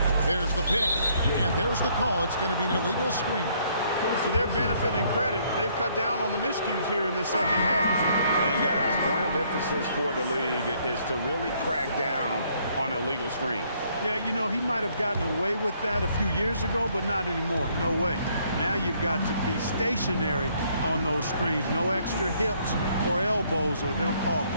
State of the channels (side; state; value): both; inverted; correlation -0.66